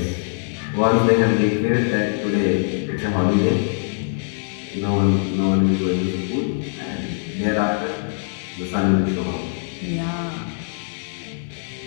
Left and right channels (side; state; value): right; silent; digital silence